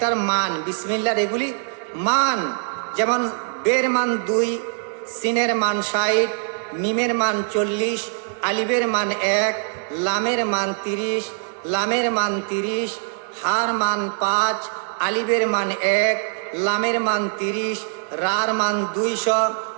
মান, বিসমিল্লাহর এগুলি মান, যেমন বের মান 2, সিনের মান 60, মিমের মান 40, আলিফের মান 1, লামের মান 30, লামের মান 30, হার মান 5, আলিফের মান 1, লামের মান 30, রার মান 200,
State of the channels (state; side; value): silent; left; 57 dB below the other